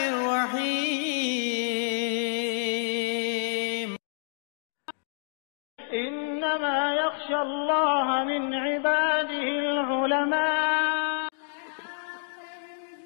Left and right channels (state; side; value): silent; right; digital silence